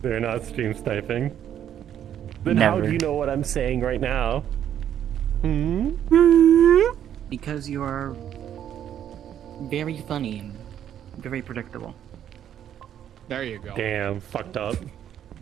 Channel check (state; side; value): quieter; left; 10.1 dB